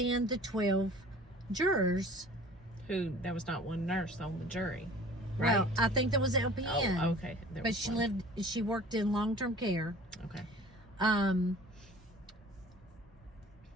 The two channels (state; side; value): normal; both; correlation 0.46